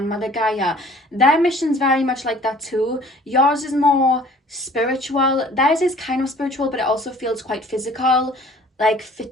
Mother Gaia. Their mission's very much like that too. Yours is more spiritual. Theirs is kind of spiritual, but it also feels quite physical, like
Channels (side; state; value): both; normal; correlation 0.52